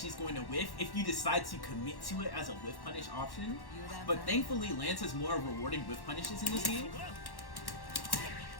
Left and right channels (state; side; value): late; right; 1.1 ms